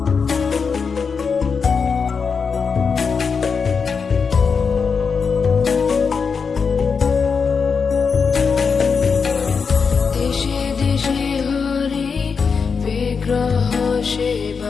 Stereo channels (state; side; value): quieter; right; 5.6 dB